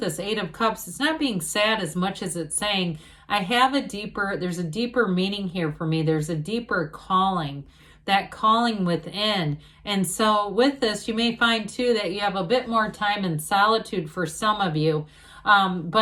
this 8 of Cups, it's not being sad as much as it's saying, there's a deeper meaning here for me. There's a deeper calling, that calling within. And so with this, you may find too that you have a bit more time in solitude for some of you.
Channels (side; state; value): both; identical; correlation 1.00